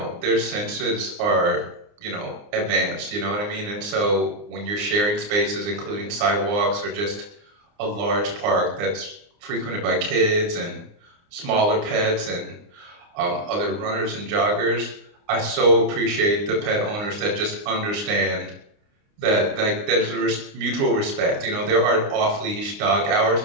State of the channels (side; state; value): left; late; 29 ms